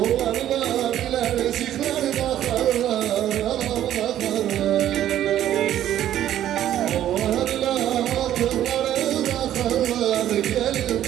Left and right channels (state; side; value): quieter; left; 11.8 dB